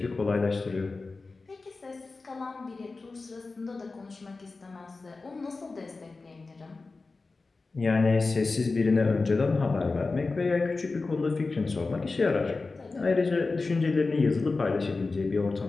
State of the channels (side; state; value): right; quieter; 3.8 dB